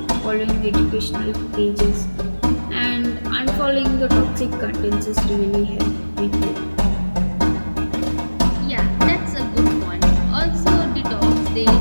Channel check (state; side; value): inverted; both; correlation -1.00